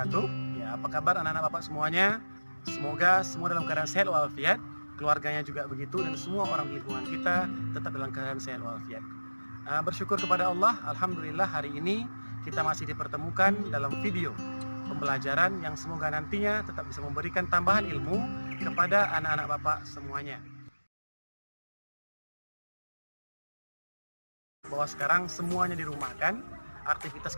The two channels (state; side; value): inverted; both; correlation -1.00